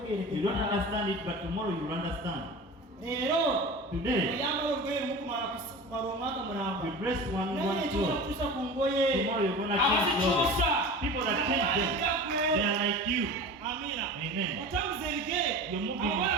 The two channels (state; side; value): normal; both; correlation 0.34